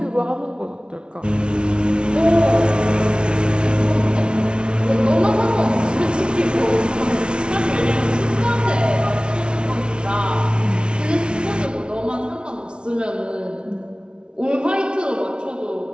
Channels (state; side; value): late; left; 0.056 ms